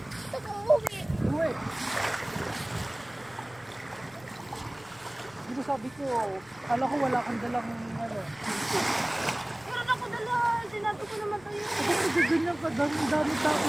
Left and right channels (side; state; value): left; noise; rumble, 26 dB below the sound